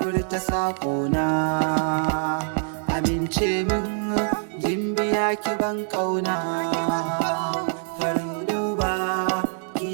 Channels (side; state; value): left; silent; 62 dB below the other